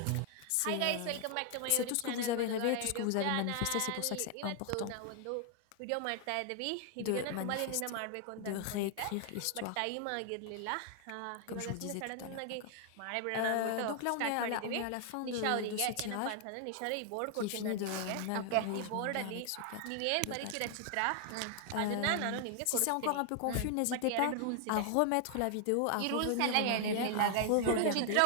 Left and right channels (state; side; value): different; both; correlation 0.00